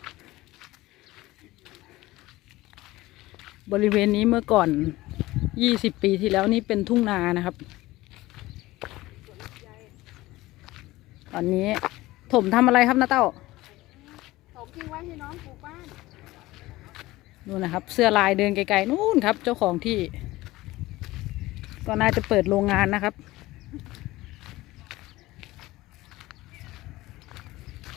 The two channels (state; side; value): quieter; right; 18.4 dB